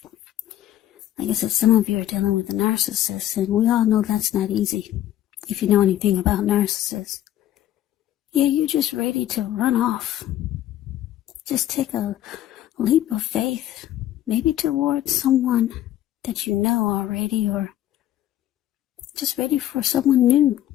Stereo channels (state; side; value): quieter; right; 12.6 dB